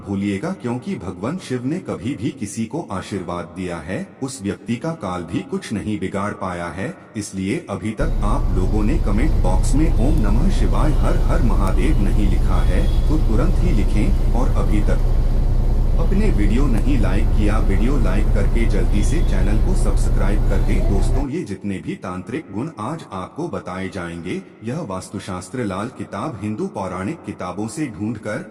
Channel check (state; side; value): identical; both; correlation 1.00